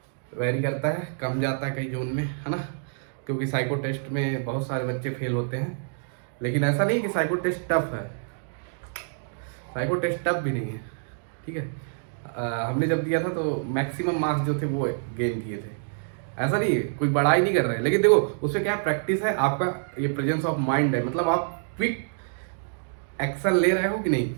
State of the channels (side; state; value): left; silent; digital silence